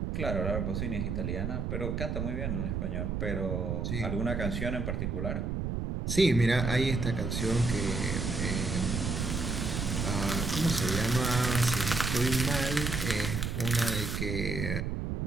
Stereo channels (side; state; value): right; noise; rumble, 1 dB below the sound